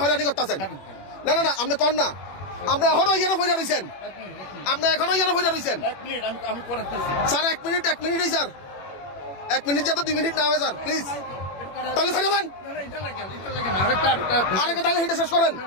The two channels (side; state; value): right; late; 21 ms